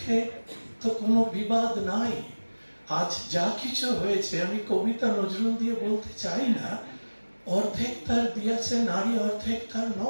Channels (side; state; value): both; inverted; correlation -1.00